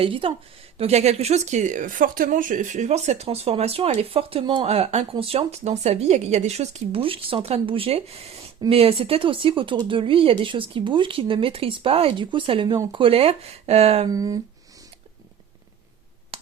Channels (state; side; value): quieter; left; 8.6 dB